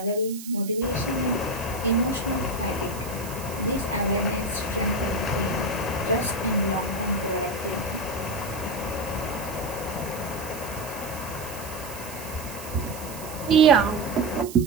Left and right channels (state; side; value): noise; right; hiss, 13 dB below the sound